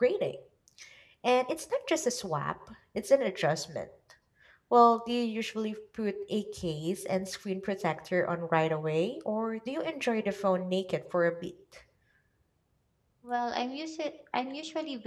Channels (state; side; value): identical; both; correlation 1.00